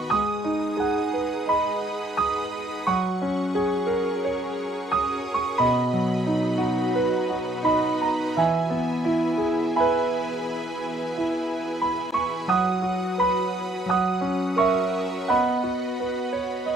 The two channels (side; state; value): both; normal; correlation 0.69